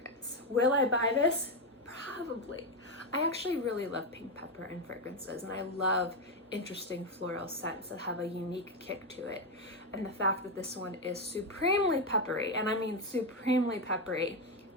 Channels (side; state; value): both; normal; correlation 0.08